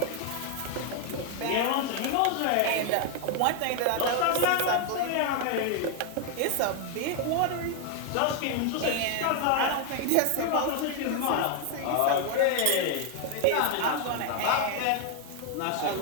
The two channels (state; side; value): different; both; correlation 0.01